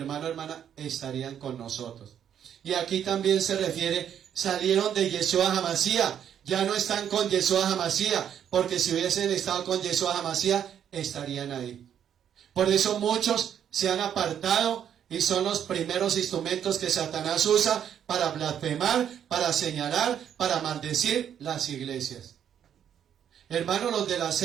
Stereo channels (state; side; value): quieter; left; 9.2 dB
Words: hermana, estarían con nosotros. Y aquí también se refiere, salieron de Yeshua HaMashiach, ya no están con Yeshua HaMashiach, porque si hubiesen estado con Yeshua HaMashiach, estarían ahí. Por eso muchos se han apartado y son los primeros instrumentos que Satanás usa para blasfemar, para señalar, para maldecir las iglesias. Hermanos, los de las